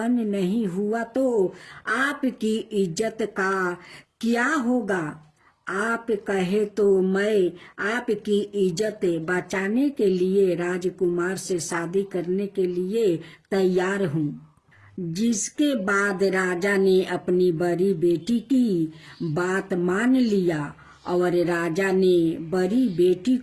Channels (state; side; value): identical; both; correlation 1.00